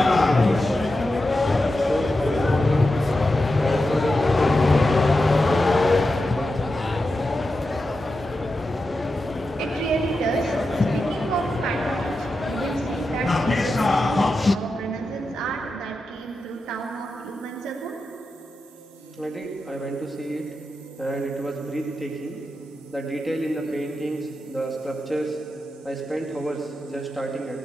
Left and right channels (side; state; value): both; normal; correlation 0.90